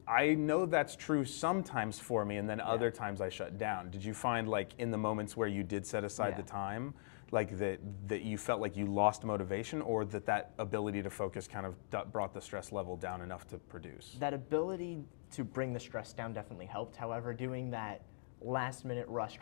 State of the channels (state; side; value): silent; right; digital silence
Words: know that's true sometimes for me, and then other times I shut down. Did you find like in the moments where you did set aside the time, like that you felt like you lost motivation, or that ability to focus kind of brought the stress level down enough to produce? That ability to bring the stress down definitely helped. However, doing that last minute rush,